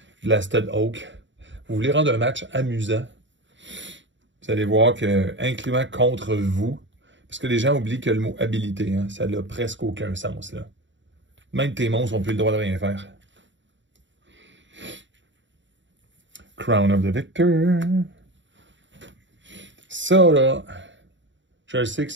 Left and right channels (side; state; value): left; late; 0.54 ms